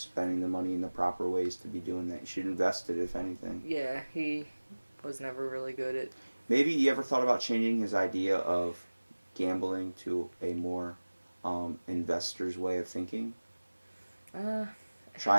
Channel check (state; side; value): inverted; both; correlation -1.00